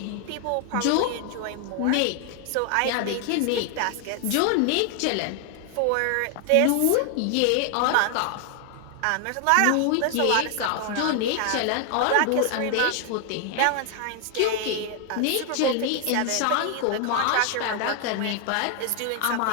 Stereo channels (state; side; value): different; both; correlation 0.00